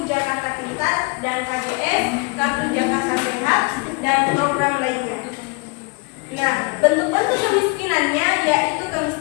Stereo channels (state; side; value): quieter; right; 29.0 dB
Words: Jakarta Pintar dan KJS, Kartu Jakarta Sehat dan program lainnya. Nah, bentuk-bentuk kemiskinannya yaitu